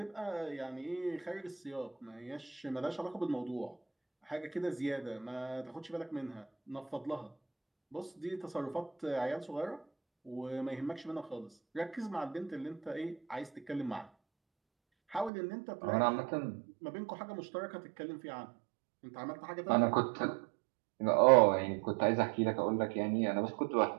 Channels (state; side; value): drops out; left; at 15.3 s